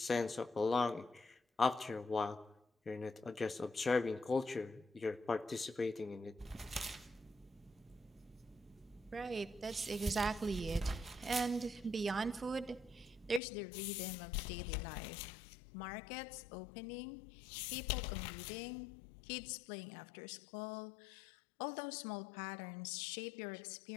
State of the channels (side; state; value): right; drops out; at 13.4 s